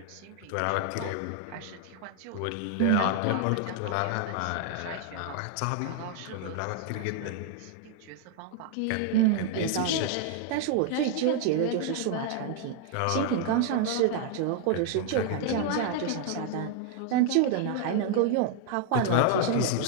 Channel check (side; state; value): both; different; correlation 0.00